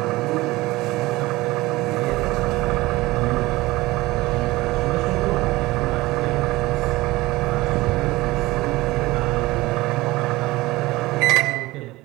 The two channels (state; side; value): quieter; left; 19.7 dB